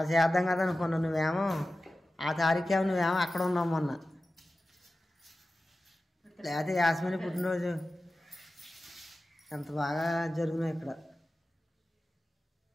చేద్దాం కదా అనుకున్నాను. నువ్వేమో ఆ తారీఖేమో నువ్వేమో అక్కడ ఉన్నావు మొన్న. లేకపోతే యాస్మిని పుట్టినరోజు ఎంత బాగా జరుగుతున్నాయి ఇక్కడ.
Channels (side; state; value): both; normal; correlation 0.95